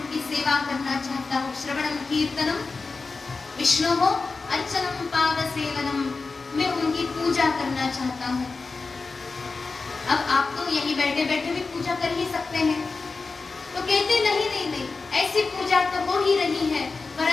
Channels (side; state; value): right; quieter; 4.1 dB